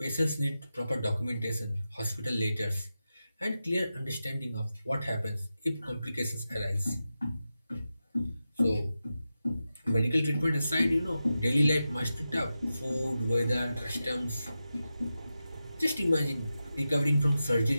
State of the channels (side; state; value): both; inverted; correlation -0.91